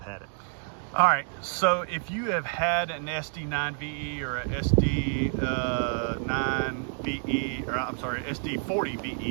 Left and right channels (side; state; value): left; silent; digital silence